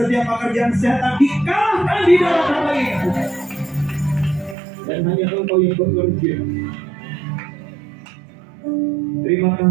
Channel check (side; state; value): left; drops out; at 4.5 s